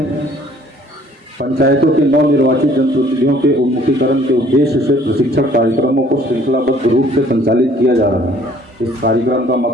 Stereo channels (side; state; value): both; normal; correlation 0.57